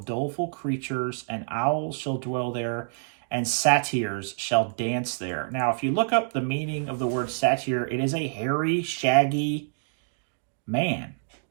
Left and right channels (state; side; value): silent; left; digital silence